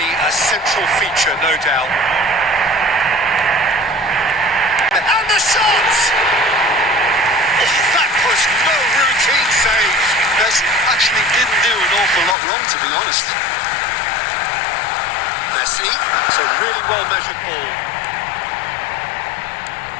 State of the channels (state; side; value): drops out; right; at 12.4 s